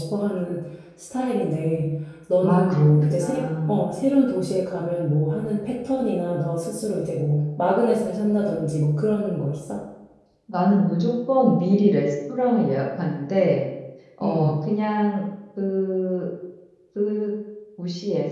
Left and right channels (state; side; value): identical; both; correlation 1.00